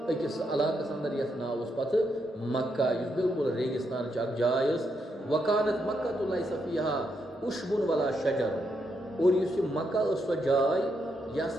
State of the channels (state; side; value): normal; both; correlation 0.80